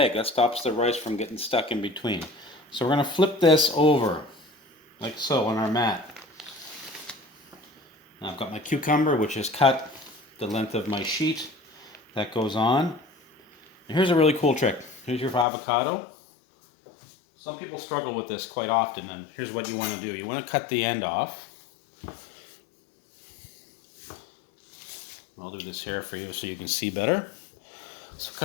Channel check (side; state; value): right; drops out; at 15.5 s